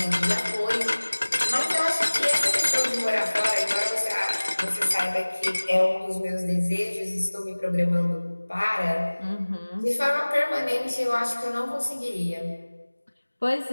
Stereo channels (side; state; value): both; inverted; correlation -1.00